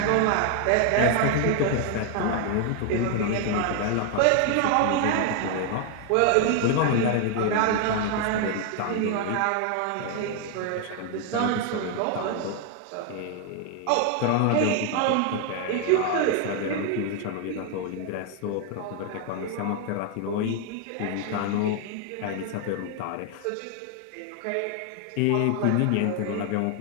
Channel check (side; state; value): both; different; correlation 0.00